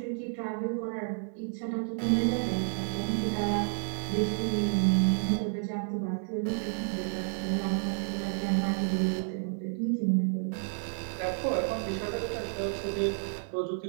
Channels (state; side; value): silent; left; digital silence